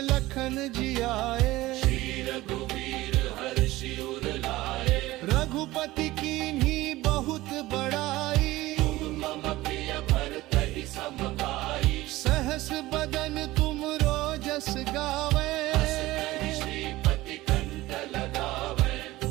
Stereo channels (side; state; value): left; quieter; 18.0 dB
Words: लखन जियाए श्री रघुवीर हर्षि उर लाए रघुपति कीन्ही बहुत बड़ाई मम प्रिय भरतहि सम भाई सहस बदन तुम रोजस गावे श्रीपति कंठ लगावे